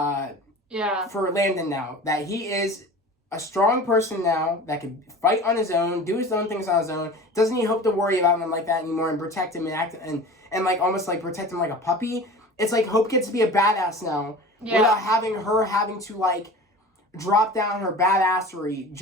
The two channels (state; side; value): normal; both; correlation 0.37